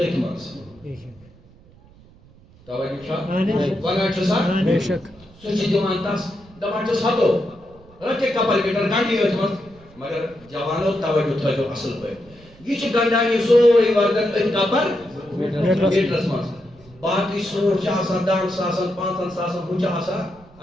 منٛز توجہ چھا ونان چھُ سا بے شک سُہ چھُ دِوان تس دپان چھُس ہتو رکھے کپر میٹر گنڈی أتھۍ منٛز مگر جوانو توجہ تھٲیزیو اصل پٲٹھۍ یہ چھُ گنڈان یہ سورُے وردن أتھۍ کپر میٹرس منٛز باقی سوٹ چھ آسان 10 ساسن 5 ساسن ہُہ چھُ آسان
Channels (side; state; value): right; noise; rumble, 25 dB below the sound